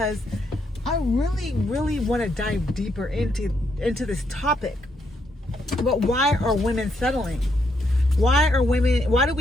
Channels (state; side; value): normal; both; correlation 0.77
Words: I really want to dive deeper into this topic. But why are women settling? Why do